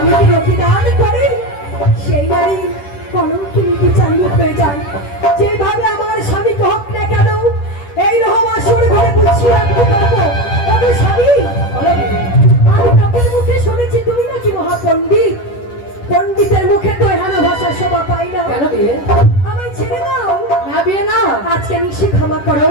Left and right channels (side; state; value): right; late; 10 ms